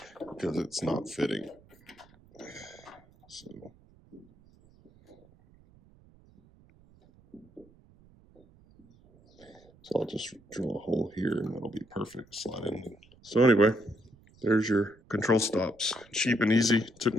because it's not fitting. So I'll just drill a hole here and that'll be perfect. Slide in. So anyway, there's your control stops. Cheap and easy. Took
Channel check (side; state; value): right; noise; rumble, 27 dB below the sound